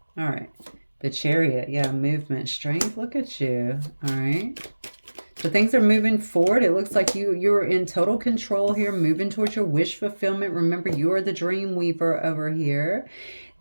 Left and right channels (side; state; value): both; inverted; correlation -1.00